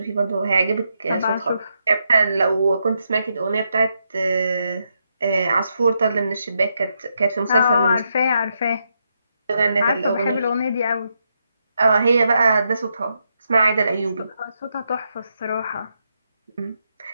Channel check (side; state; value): both; inverted; correlation -0.81